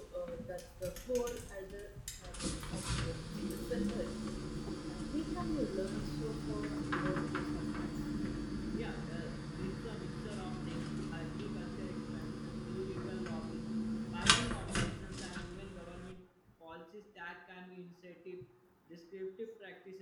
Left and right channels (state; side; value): identical; both; correlation 1.00